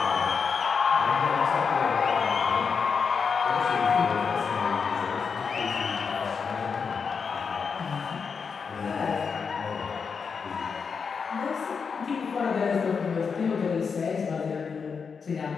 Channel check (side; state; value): right; quieter; 5.8 dB